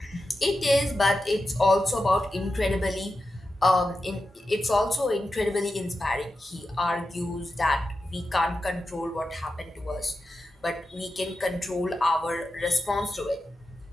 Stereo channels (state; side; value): normal; both; correlation 0.91